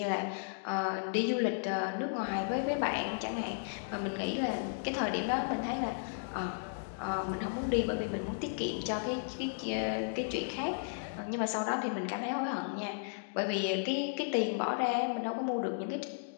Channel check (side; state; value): right; silent; digital silence